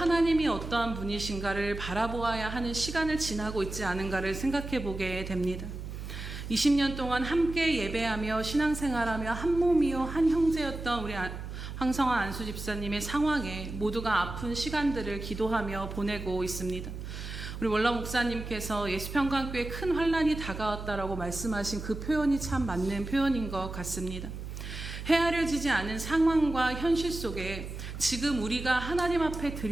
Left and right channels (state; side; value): noise; right; hum, 8 dB below the sound